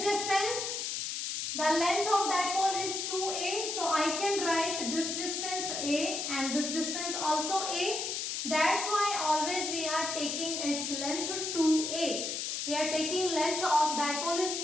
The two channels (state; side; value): noise; left; hiss, 3 dB below the sound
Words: distance, the length of dipole is 2a, so I can write this distance a and this distance also a. That's why always we are taking its length 2a. We are taking length of dipole is